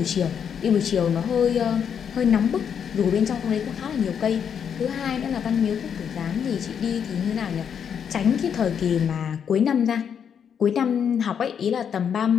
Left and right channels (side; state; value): right; quieter; 7.7 dB